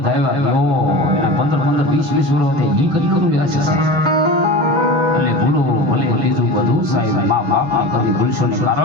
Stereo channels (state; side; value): late; left; 6.2 ms